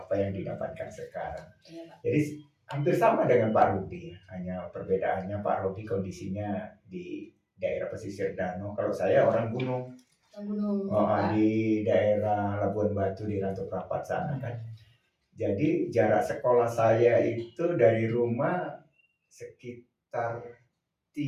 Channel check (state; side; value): identical; both; correlation 1.00